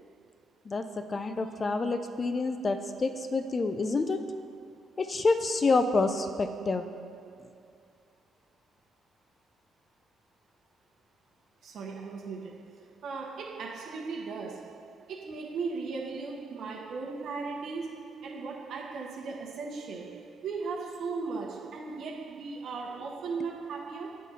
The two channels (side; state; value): both; normal; correlation 0.83